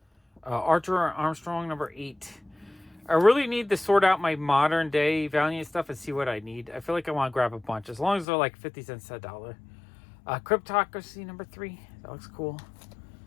Archer Armstrong, number 8. I really need to sort out my modern day Valiant stuff and see what I need. I feel like I want to grab a bunch, as long as they're like 50 cents to $1. Cryptocracy, number 3. That looks cool.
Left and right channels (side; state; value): right; drops out; at 8.2 s